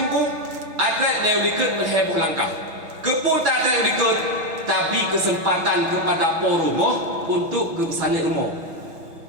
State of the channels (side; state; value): left; late; 6.0 ms